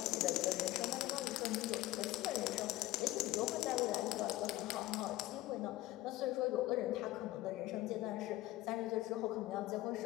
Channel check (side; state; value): right; quieter; 16.9 dB